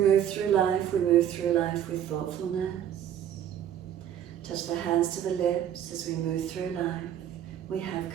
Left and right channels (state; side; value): quieter; left; 10.1 dB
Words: through life with thoughtfulness. Touch the hands to the lips as we move through life. We have